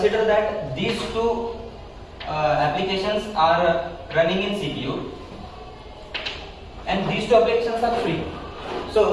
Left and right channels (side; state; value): both; identical; correlation 1.00